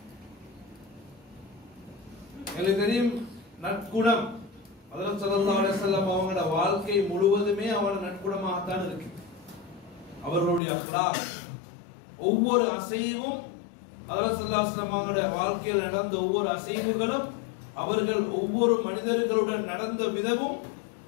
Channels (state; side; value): drops out; right; at 10.6 s